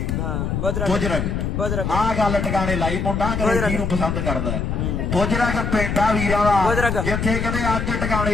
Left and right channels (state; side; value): noise; left; rumble, 1 dB below the sound